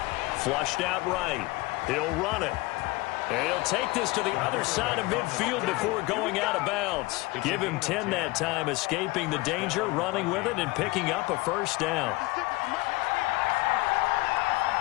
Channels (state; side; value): quieter; right; 21.9 dB